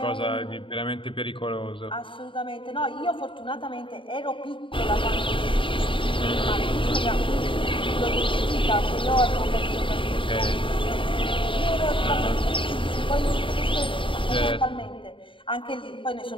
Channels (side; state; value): right; late; 0.25 ms